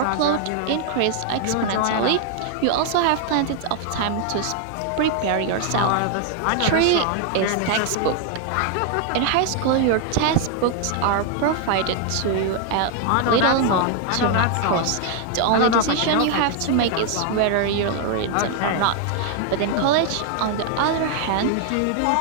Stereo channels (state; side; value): different; both; correlation 0.00